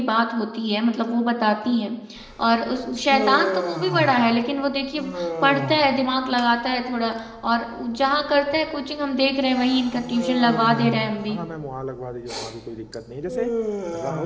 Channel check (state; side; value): identical; both; correlation 1.00